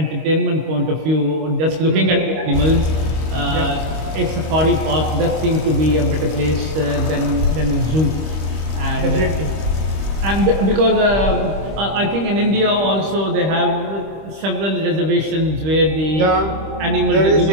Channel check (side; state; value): left; late; 26 ms